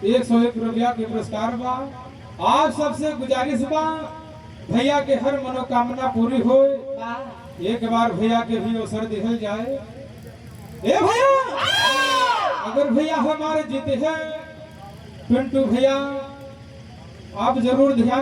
101 रुपया के पुरस्कार बा। आप सबसे गुजारिश बा भैया के हर मनोकामना पूरी हो। एक बार भैया के भी अवसर दिखल जाए। ए भैया अगर भैया हमारे जीते हैं पिंटू भैया आप जरूर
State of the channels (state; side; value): identical; both; correlation 1.00